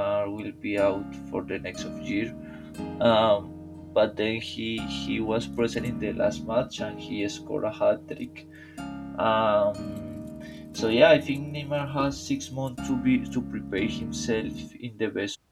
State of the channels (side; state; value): both; identical; correlation 1.00